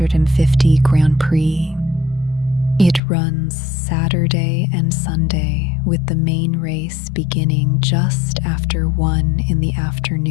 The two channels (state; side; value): drops out; right; at 3.0 s